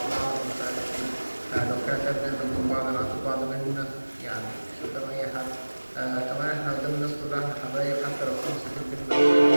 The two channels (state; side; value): inverted; both; correlation -1.00